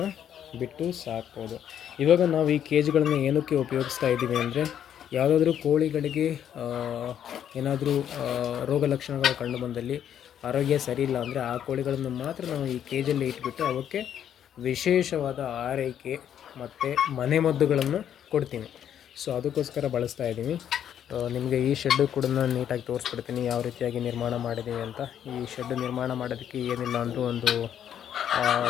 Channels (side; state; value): right; quieter; 9.6 dB